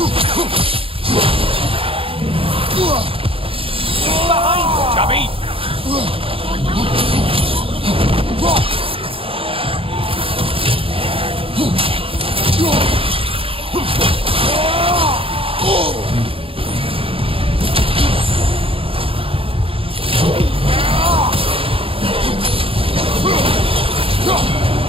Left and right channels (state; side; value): late; left; 0.27 ms